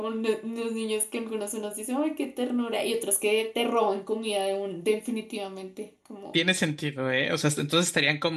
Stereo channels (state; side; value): identical; both; correlation 1.00